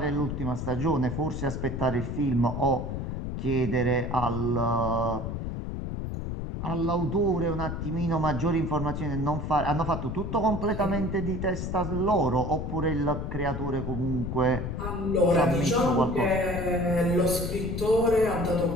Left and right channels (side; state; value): left; noise; rumble, 4 dB below the sound